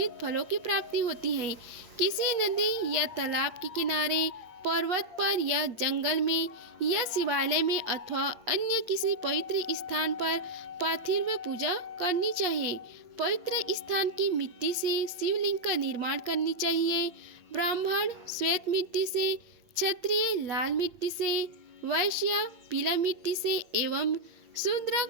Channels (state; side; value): late; left; 8.6 ms